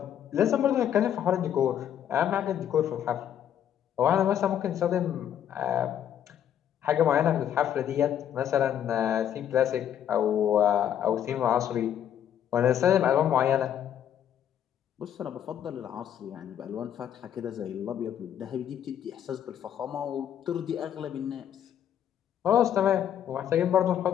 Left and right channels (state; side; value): quieter; right; 9.9 dB